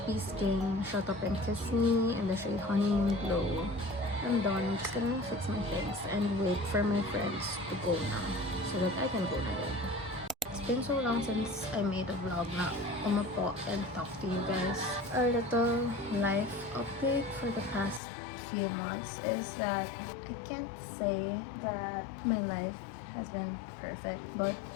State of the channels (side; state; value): right; drops out; at 18.0 s